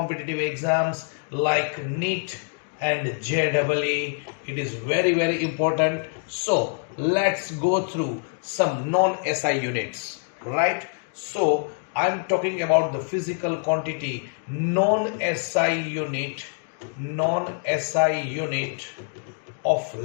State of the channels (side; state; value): right; silent; 59 dB below the other